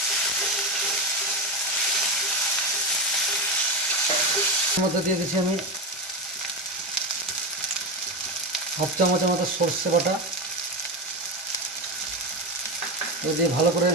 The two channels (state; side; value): normal; both; correlation 0.16